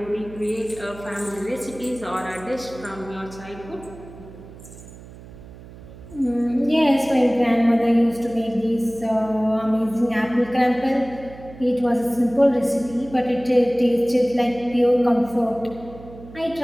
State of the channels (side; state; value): right; noise; hum, 18 dB below the sound